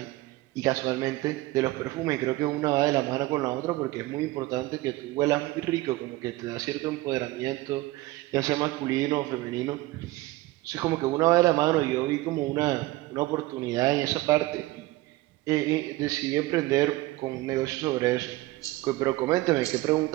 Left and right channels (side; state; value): left; quieter; 18.8 dB